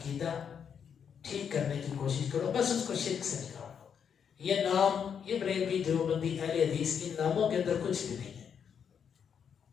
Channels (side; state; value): right; quieter; 7.5 dB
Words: ٹھیک کرنے کی کوشش کرو، بس اس کو شرک سے نکالو۔ یہ نام، یہ بریلوی، دیوبندی، اہل حدیث، ان ناموں کے اندر کچھ بھی نہیں ہے،